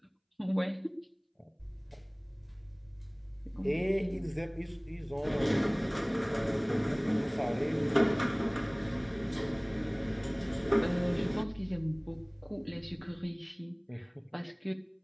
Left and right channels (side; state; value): both; identical; correlation 1.00